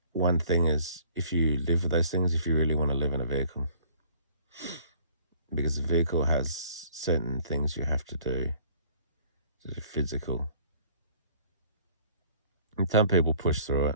One thing is, if you live with those things, if you really want to live in a vehicle, because the vehicle has certain things you have to do, sort of physical. And some people push through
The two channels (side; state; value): both; inverted; correlation -0.55